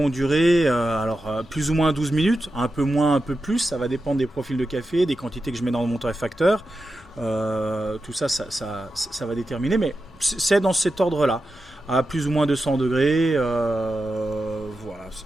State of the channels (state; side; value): normal; both; correlation 0.90